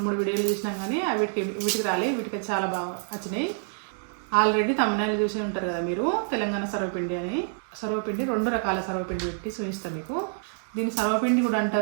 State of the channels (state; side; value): silent; left; digital silence